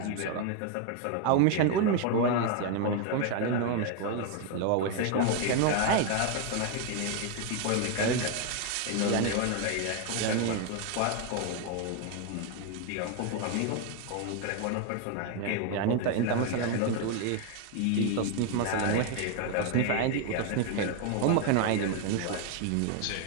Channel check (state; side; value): different; both; correlation 0.01